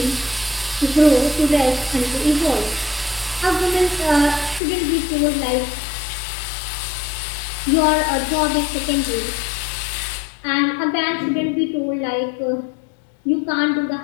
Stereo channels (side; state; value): right; drops out; at 4.6 s